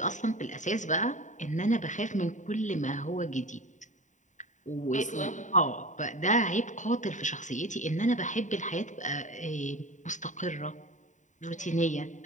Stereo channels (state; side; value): late; right; 0.36 ms